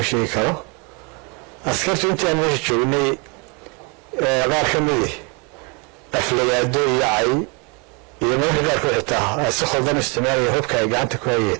sheegi karo askartu intaan meesha joognay qaar ka midi aflagaado iyo cay iyo mararka qaarkood xitaa ay si khaldan isticmaalaya hubka ay gacanta ku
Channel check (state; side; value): quieter; left; 32.0 dB